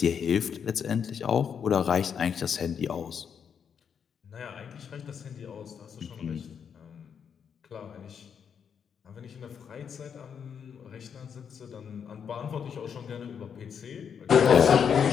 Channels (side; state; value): right; quieter; 7.4 dB